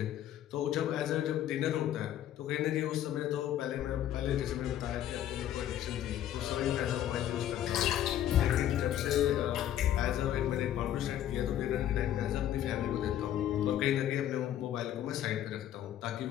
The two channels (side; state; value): right; quieter; 11.5 dB